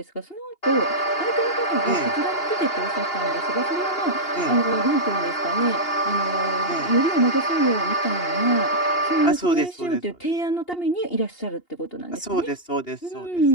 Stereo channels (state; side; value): late; right; 2.8 ms